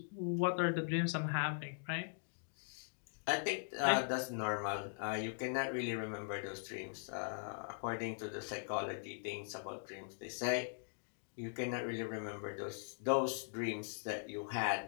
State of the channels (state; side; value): silent; right; digital silence